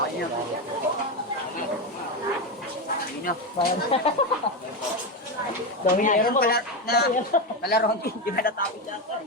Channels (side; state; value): both; normal; correlation 0.13